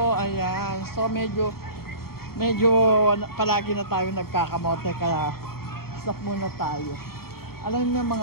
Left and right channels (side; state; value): right; late; 0.94 ms